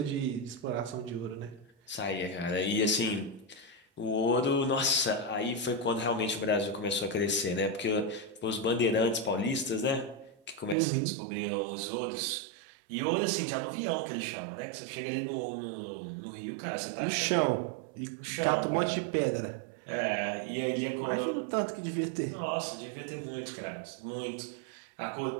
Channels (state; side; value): drops out; left; at 10.8 s